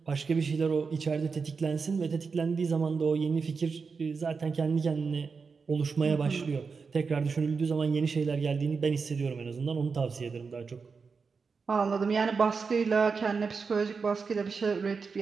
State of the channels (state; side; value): quieter; left; 5.1 dB